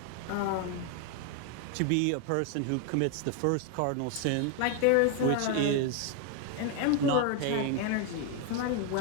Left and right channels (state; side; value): different; both; correlation 0.01